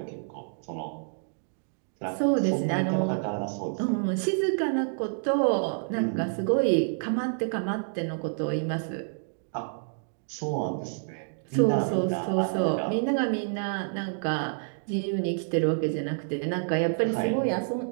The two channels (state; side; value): silent; left; digital silence